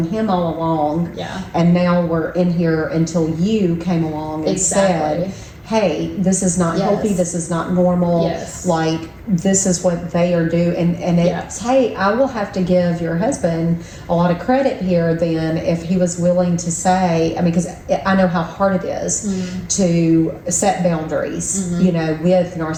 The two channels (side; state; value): both; identical; correlation 1.00